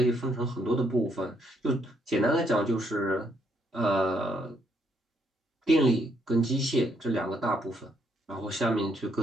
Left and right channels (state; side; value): normal; both; correlation 0.73